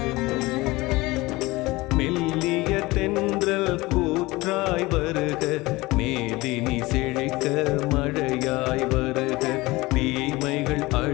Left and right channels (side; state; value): right; quieter; 21.1 dB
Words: மெல்லிய தென்றல் கூற்றாய் வருக, மேதினி செழிக்க மழையாய் வருக. தீமைகள்